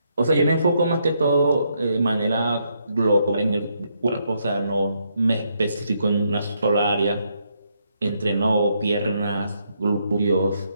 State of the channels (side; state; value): both; inverted; correlation -0.76